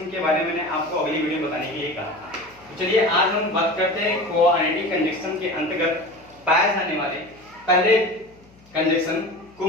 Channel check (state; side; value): noise; left; hum, 28 dB below the sound